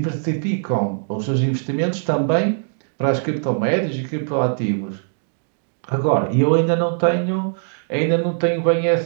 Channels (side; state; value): left; silent; digital silence